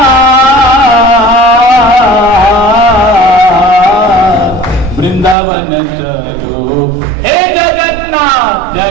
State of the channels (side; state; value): left; drops out; at 5.4 s